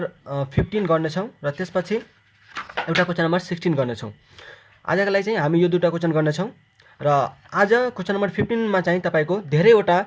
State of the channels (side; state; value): both; identical; correlation 1.00